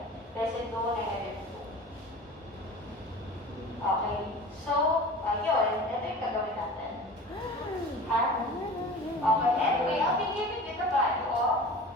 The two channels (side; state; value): both; normal; correlation 0.38